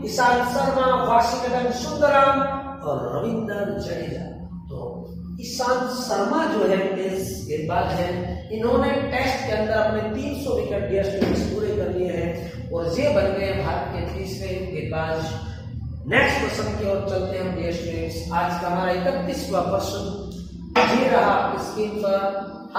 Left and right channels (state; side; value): identical; both; correlation 1.00